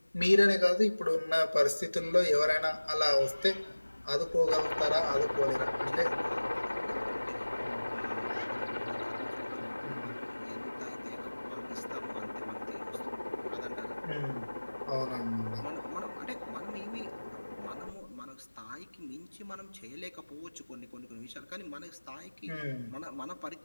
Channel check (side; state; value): both; inverted; correlation -1.00